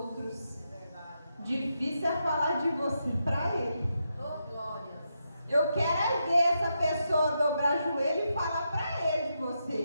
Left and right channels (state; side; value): inverted; both; correlation -0.84